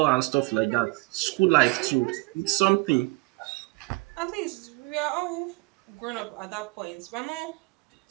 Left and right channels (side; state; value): left; quieter; 26.5 dB